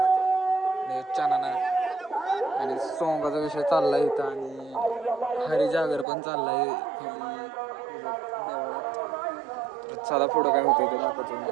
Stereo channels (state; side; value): drops out; left; at 6.1 s